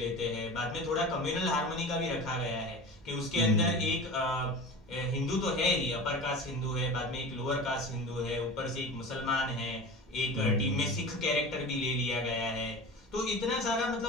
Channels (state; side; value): normal; both; correlation 0.33